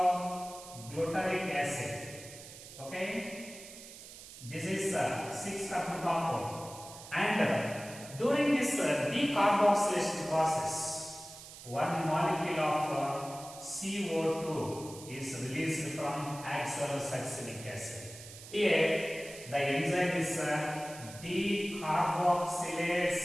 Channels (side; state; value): right; noise; hiss, 15 dB below the sound